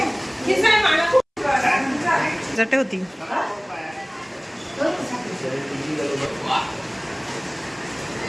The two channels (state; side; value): identical; both; correlation 1.00